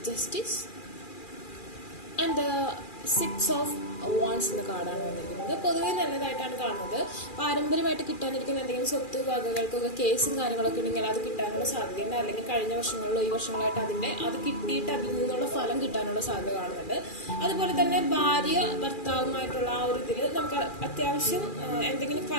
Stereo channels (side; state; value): right; late; 2.4 ms